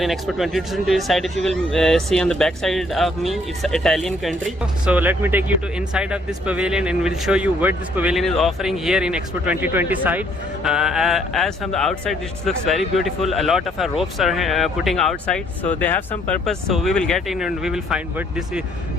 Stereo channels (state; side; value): normal; both; correlation 0.65